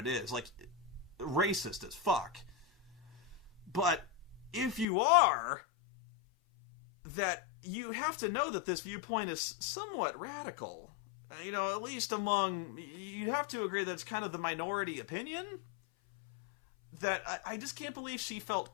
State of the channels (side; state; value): right; drops out; at 4.9 s